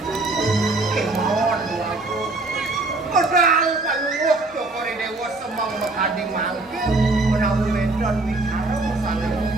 kemauan duaku modal palungok Joko Ridewo semang makading mangkir menawi wedon bicara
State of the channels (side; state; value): left; quieter; 3.1 dB